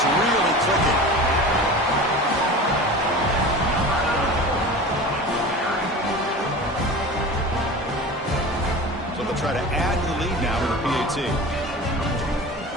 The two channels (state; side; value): normal; both; correlation 0.34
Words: really clicking. So they'll try to add to the lead now to the PAT.